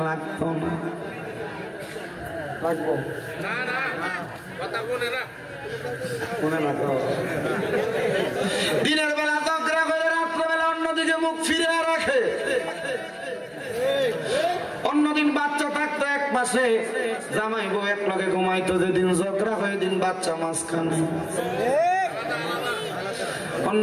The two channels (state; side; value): identical; both; correlation 1.00